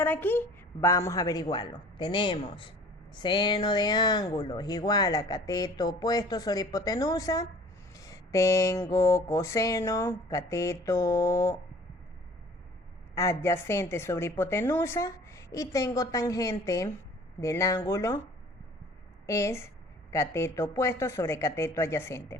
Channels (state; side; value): normal; both; correlation 0.48